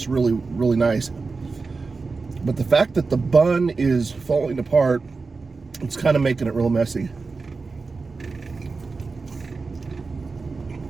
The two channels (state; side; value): quieter; left; 4.2 dB